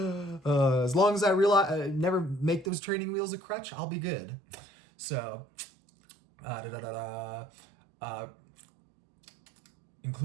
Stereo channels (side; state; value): left; drops out; at 2.7 s